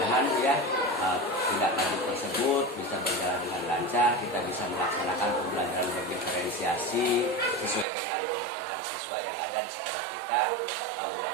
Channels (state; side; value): drops out; left; at 7.9 s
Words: ya tindak lanjut tersebut bisa berjalan dengan lancar, kita bisa melaksanakan pembelajaran berdiferensiasi sesuai dengan kebutuhan siswa yang ada di sekolah kita.